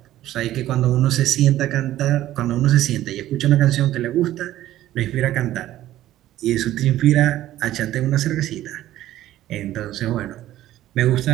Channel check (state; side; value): quieter; left; 13.9 dB